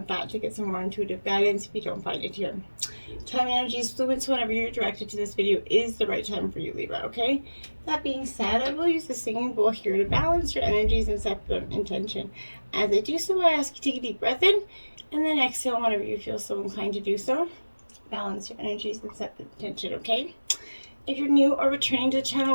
that to get some more intuitive guidance if you don't find it here. Time energy is fluid, so whenever you're directed to this video is the right time for you, Libra, okay? That being said, I will use the singing bowl here to balance your energies and set the intention. As I do so, I ask you to take a deep breath in, and then exhale whenever you feel so inclined to do so. Balance your energies and set the intention, okay? If you're new or returning to the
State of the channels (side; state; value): both; inverted; correlation -1.00